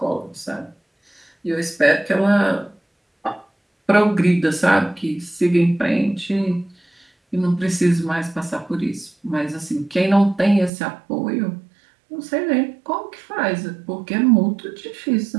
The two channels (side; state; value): left; drops out; at 10.7 s